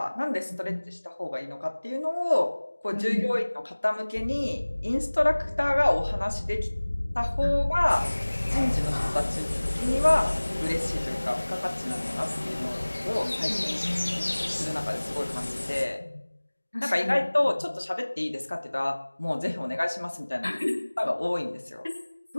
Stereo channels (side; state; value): both; inverted; correlation -1.00